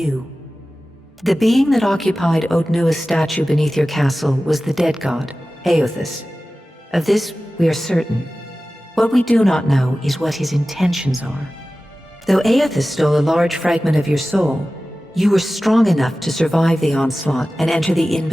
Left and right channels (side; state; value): both; normal; correlation 0.96